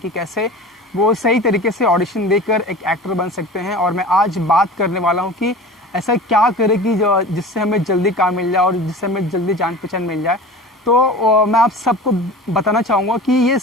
कैसे वो सही तरीके से ऑडिशन देकर एक एक्टर बन सकते हैं। और मैं आज बात करने वाला हूं कि ऐसा क्या करें कि जिससे हमें जल्दी काम मिल जाए और जिससे हमें जल्दी जान पहचान मिल जाए। तो मैं आप सबको बताना चाहूँगा कि ये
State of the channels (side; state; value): both; normal; correlation 0.37